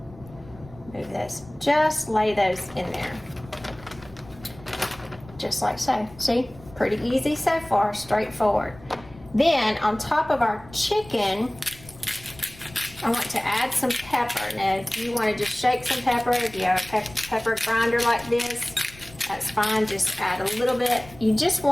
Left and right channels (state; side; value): noise; left; rumble, 21 dB below the sound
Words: Move this. Just lay those in there. Just like so. See? Pretty easy so far. Straightforward. Then on top of our chicken, I want to add some pepper. Now, if you want to just shake some pepper, if you have a pepper grinder like this, that's fine. Just add a little bit. You just